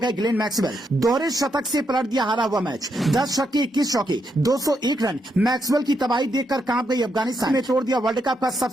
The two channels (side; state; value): both; normal; correlation 0.80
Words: ग्लेन मैक्सवेल। दोहरे शतक से पलट दिया हारा हुआ मैच। 10 छक्के 21 चौके 201 रन। मैक्सवेल की तबाही देखकर कांप गई अफगानिस्तान ने तोड़ दिया वर्ल्ड कप का